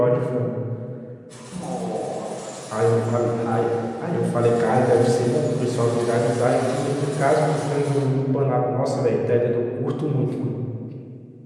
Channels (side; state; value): both; identical; correlation 1.00